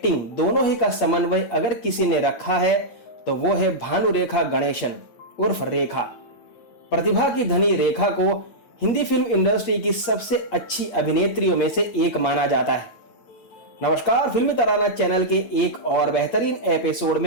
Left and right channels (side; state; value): right; late; 8.6 ms